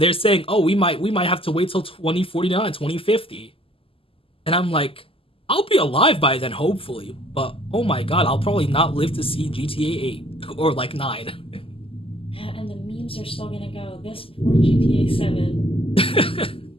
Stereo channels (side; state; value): right; late; 0.26 ms